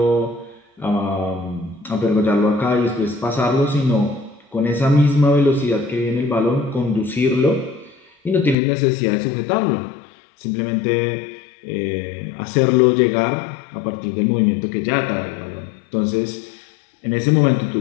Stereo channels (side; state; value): right; drops out; at 8.6 s